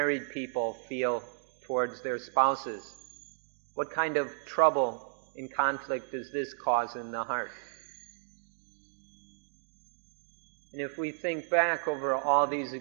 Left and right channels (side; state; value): left; silent; digital silence